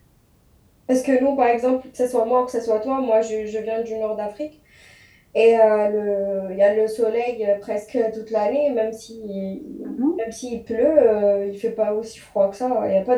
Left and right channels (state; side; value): identical; both; correlation 1.00